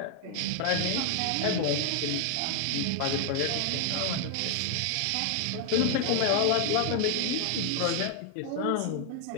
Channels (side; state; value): both; different; correlation 0.00